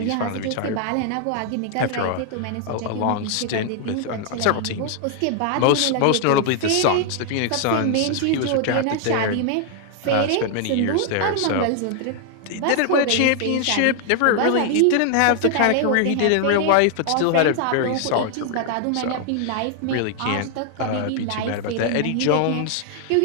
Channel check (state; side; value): different; both; correlation 0.00